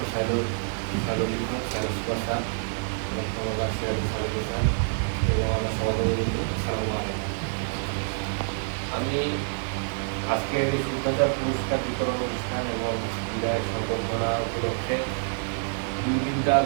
সাইলোলিঙ্গ সুপারস্টার এবং আমার সভাপতি আসসালামু আলাইকুম। আমি আজকের এই শুদ্ধাচার পুরস্কার বিতরণ অনুষ্ঠান এবং বিদায় সংবর্ধনা উপলক্ষে দুই তিনটা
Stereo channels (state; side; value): silent; left; 60 dB below the other